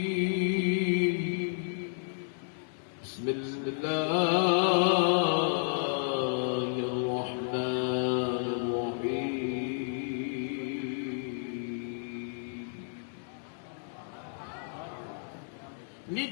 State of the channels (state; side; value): silent; right; digital silence